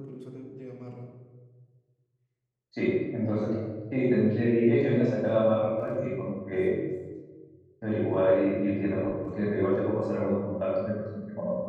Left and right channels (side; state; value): both; identical; correlation 1.00